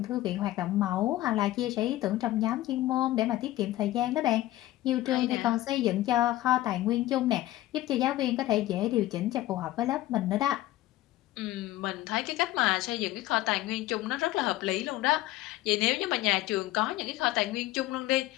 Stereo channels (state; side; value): quieter; right; 15.8 dB